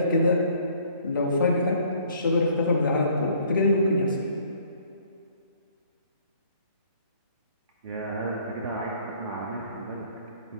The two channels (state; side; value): inverted; both; correlation -0.59